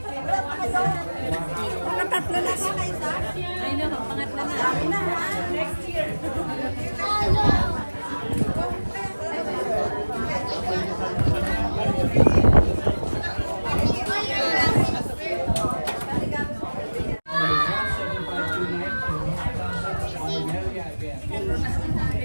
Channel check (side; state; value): both; inverted; correlation -1.00